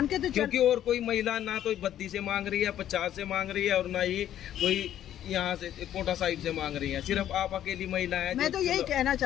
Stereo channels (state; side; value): quieter; right; 11.3 dB